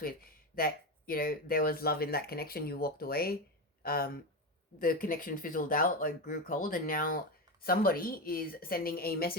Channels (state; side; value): normal; both; correlation 0.16